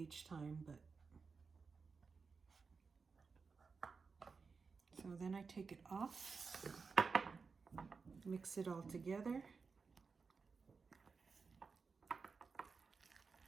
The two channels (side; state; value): left; quieter; 4.9 dB